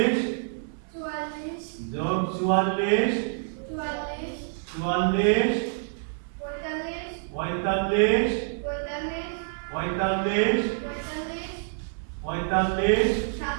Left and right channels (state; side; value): silent; left; 60 dB below the other